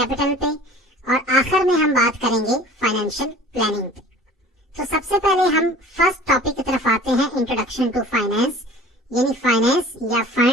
पे और आखिर में हम बात करेंगे फाइनेंशियल प्लानिंग पे। तो सबसे पहले हम फर्स्ट टॉपिक की तरफ आते हैं, इंट्रोडक्शन टू फाइनेंस, यानी फाइनेंस या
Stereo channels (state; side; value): normal; both; correlation 0.45